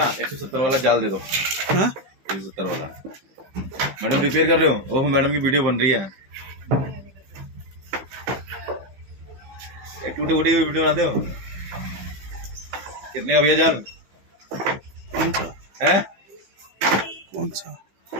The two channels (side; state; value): left; late; 15 ms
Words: 170 वाला जाल दे दो। हाँ 170 वाला। मैडम रिपेयर कर रहे हो? ओह मैडम की वीडियो बन रही है। एक टूटे फूटे वीडियो बनाते हो? कितने का भैया जाल? कौन सा? है कौन सा?